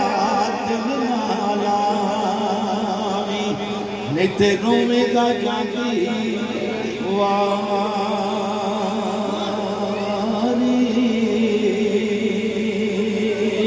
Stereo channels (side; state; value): both; identical; correlation 1.00